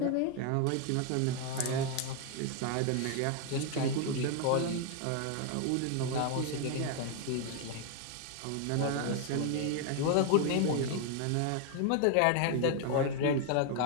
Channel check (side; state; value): both; different; correlation 0.00